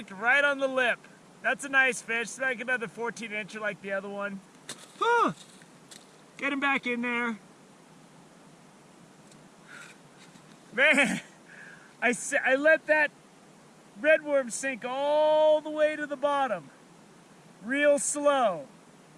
right on the lip. That's a nice fish. It's like another 14-incher like the other one. Get him back in there. Man, I let that red worm sink all the way to the bottom. Real slow.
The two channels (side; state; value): both; identical; correlation 1.00